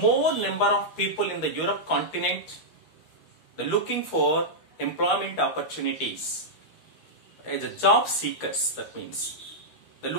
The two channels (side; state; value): right; late; 13 ms